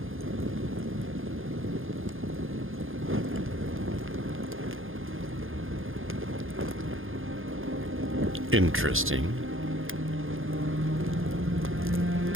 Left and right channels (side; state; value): left; late; 0.59 ms